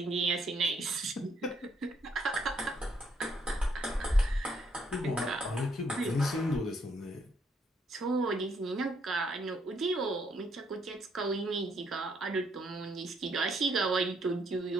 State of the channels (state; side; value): normal; both; correlation 0.71